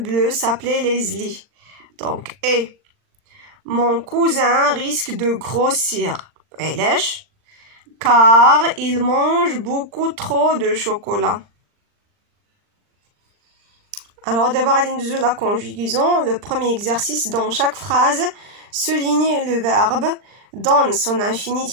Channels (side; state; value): left; late; 39 ms